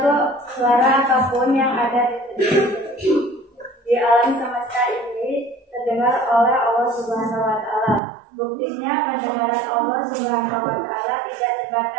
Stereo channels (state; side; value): drops out; left; at 8.0 s